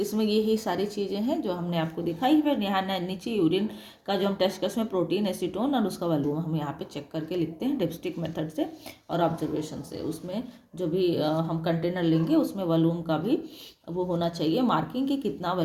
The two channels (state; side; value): identical; both; correlation 1.00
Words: इसमें यही सारी चीज़ें हैं जो हमने आपको दिखाई। फिर यहाँ नीचे यूरिन का जो हम टेस्ट कर उसमें प्रोटीन, एसीटोन और उसका वॉल्यूम हम यहाँ पे चेक करके लिखते हैं डिप्स्टिक मेथड से और ऑब्जर्वेशन से। उसमें जो भी हम कंटेनर लेंगे उसमें वॉल्यूम का भी वो होना चाहिए मार्किंग कि कितना